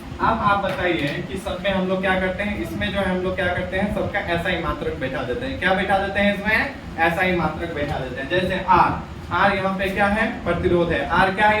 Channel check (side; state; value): both; identical; correlation 1.00